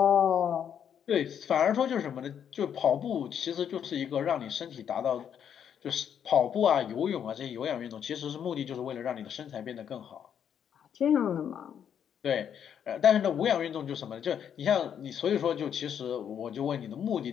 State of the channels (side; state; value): right; quieter; 8.6 dB